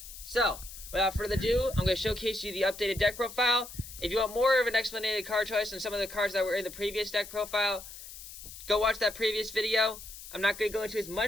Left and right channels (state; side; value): noise; left; hiss, 14 dB below the sound